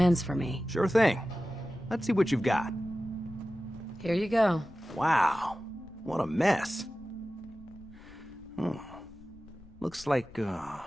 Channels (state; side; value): noise; left; rumble, 21 dB below the sound